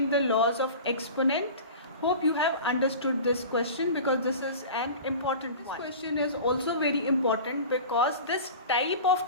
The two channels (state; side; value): inverted; both; correlation -0.36